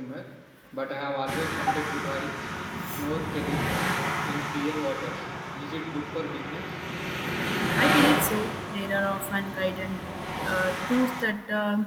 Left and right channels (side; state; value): both; identical; correlation 1.00